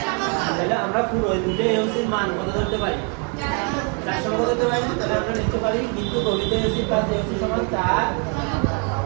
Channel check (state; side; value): quieter; left; 38.0 dB